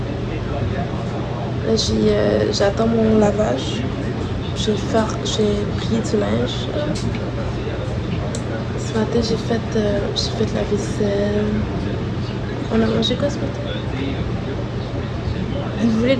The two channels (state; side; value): identical; both; correlation 1.00